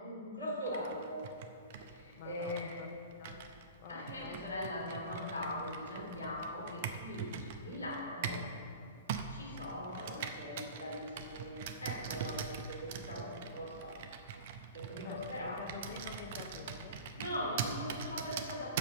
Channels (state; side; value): inverted; both; correlation -0.37